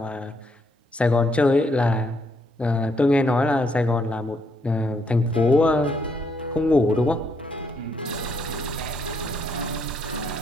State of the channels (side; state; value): both; normal; correlation 0.73